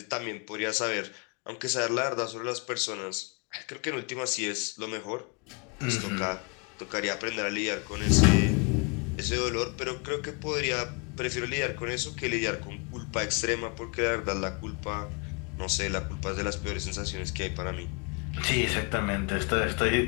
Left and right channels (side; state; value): right; quieter; 32.9 dB